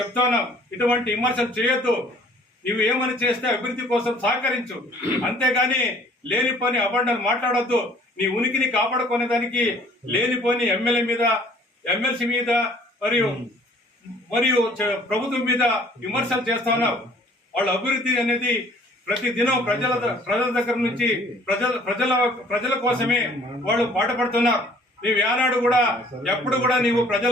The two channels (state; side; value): normal; both; correlation 0.56